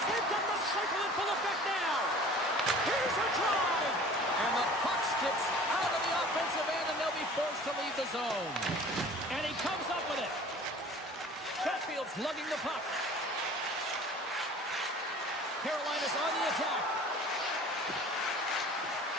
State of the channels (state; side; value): normal; both; correlation 0.45